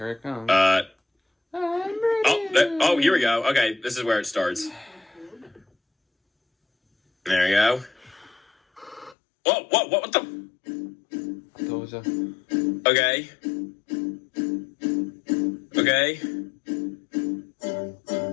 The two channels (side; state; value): right; drops out; at 9.2 s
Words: it comes. Here we go. Okay, this is where it starts. There we go. Whoa, what the? I told you. Okay. Okay.